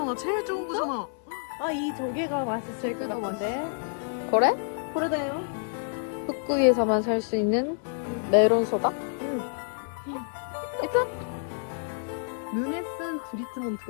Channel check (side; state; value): right; silent; digital silence